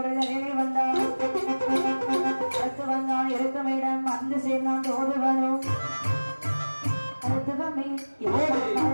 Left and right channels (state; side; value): inverted; both; correlation -1.00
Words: நிலையிலே வந்தான். அடுத்து வந்தான் இருக்கமிடம் வந்து சேர்ந்தான் தோதுவனும். மருத்துவமே